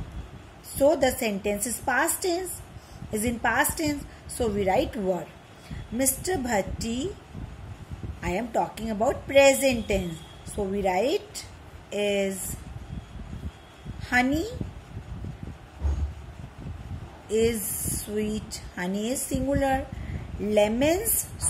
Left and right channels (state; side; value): identical; both; correlation 1.00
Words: So, the sentence is past tense. Is in past tense. So, we write were. Mr. Bhatti, I am talking about present tense. So, we write is. Honey is sweet. Honey is singular. Lemons,